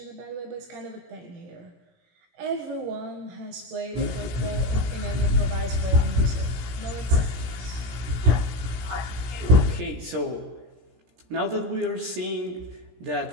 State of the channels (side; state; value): left; late; 17 ms